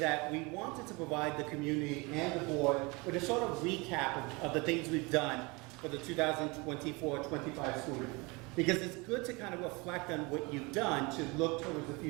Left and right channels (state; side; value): quieter; left; 26.7 dB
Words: we wanted to provide the community and the board with a sort of recap of the things we've done for the 2024-25 school year. Because it's good to kind of reflect on what you've done to look towards the